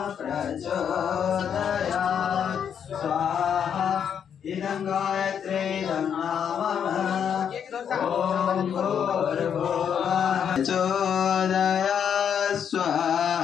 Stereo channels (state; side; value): quieter; right; 8.1 dB